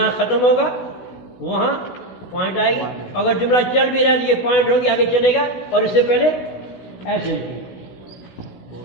खत्म होगा वहाँ पॉइंट आएगी। अगर जुमला चल भी रहा है तो ये पॉइंट होगी, आगे चलेगा, और इससे पहले ऐसे लिखेंगे।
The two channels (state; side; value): late; right; 16 ms